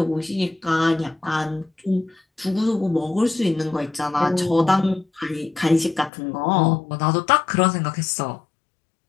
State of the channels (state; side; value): drops out; right; at 6.1 s